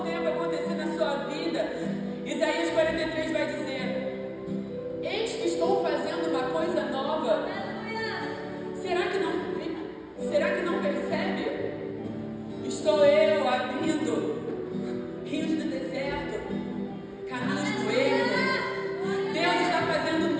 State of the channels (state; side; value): identical; both; correlation 1.00